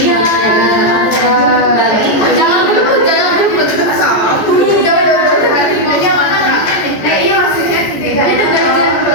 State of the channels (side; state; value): right; late; 14 ms